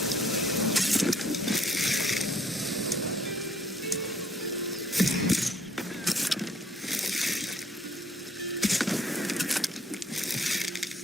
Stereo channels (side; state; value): both; normal; correlation 0.63